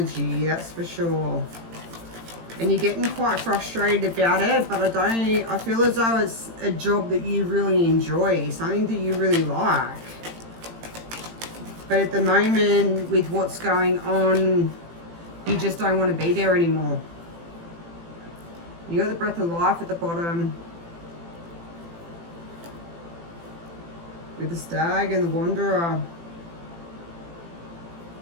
that's for sure. And you're getting quite frustrated about it, but I feel as though it's a job that you really enjoy, something that you really like. But at the moment, with what's going on, you just don't want to be there anymore. You got the Breath of Life at the bottom. With the Stag and the Wanderer.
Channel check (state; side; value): late; left; 18 ms